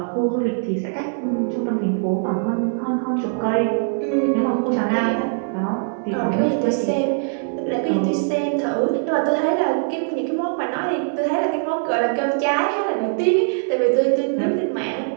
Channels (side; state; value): left; silent; digital silence